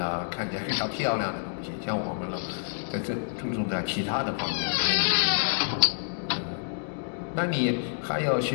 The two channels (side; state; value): right; silent; digital silence